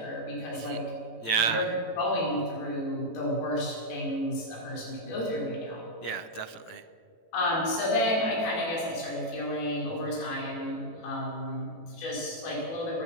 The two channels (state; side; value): late; right; 18 ms